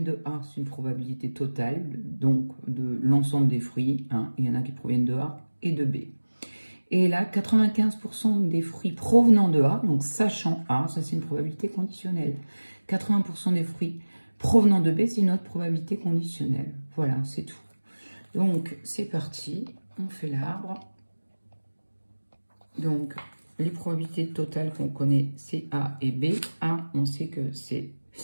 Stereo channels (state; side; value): inverted; both; correlation -1.00